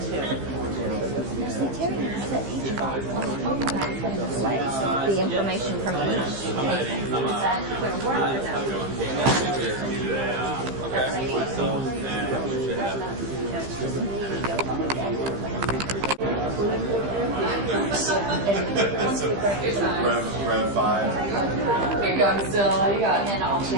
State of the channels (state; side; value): late; left; 15 ms